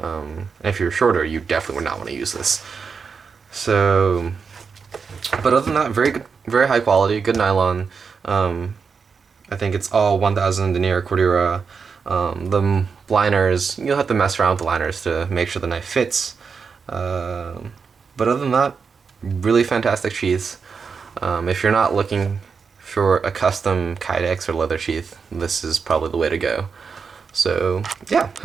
if you're shorter, you definitely would not want to use this. So, but other than that, very good, very high quality, good nylon. I think it's all 1000 denier Cordura. The liners, you'll have to mess around with the liners to make sure the knife fits. But other than that, really fantastic sheaths. If you're not looking for a custom Kydex or leather sheath, this is probably the way to go. So yeah,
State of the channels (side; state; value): left; quieter; 5.6 dB